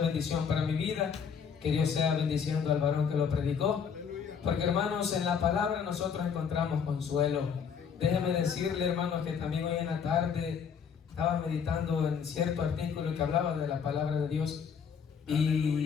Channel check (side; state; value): right; quieter; 6.8 dB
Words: para mi vida. Que Dios sea bendiciendo al varón que lo predicó. Porque, hermanos, en la palabra nosotros encontramos consuelo. Déjeme decirle, hermanos, que también hoy en la tarde estaba meditando en cierto artículo que hablaba de la palabra de Dios.